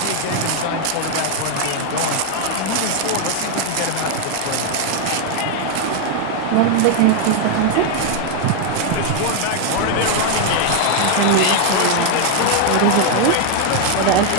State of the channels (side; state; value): both; different; correlation 0.01